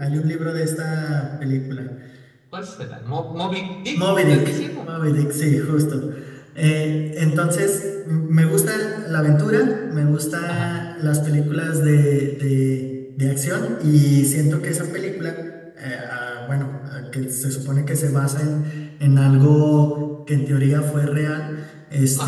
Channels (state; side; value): identical; both; correlation 1.00